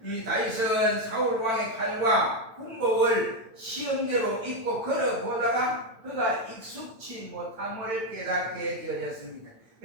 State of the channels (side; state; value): left; late; 9.0 ms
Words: 이 다윗은 사울 왕의 칼과 군복을 시험대로 입고 걸어보다가 그가 익숙치 못함을 깨닫게 되어졌습니다.